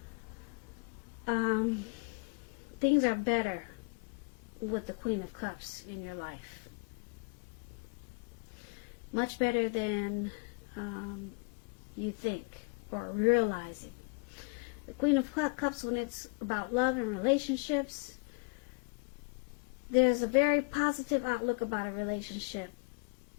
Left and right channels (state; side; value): quieter; right; 35.4 dB